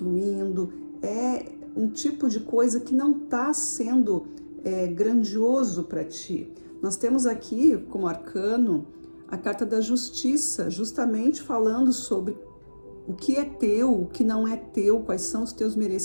é um tipo de coisa que não tá sendo grandioso para ti. Nós temos aqui como arcano a carta da justiça, justamente falando sobre o que é teu, o que não é teu, quais são os teus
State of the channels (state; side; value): inverted; both; correlation -1.00